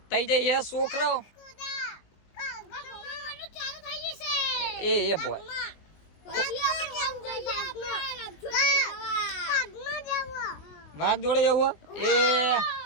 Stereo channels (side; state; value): right; late; 20 ms